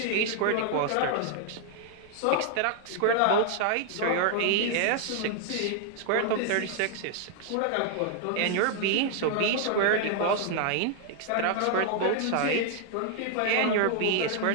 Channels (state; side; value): different; both; correlation 0.00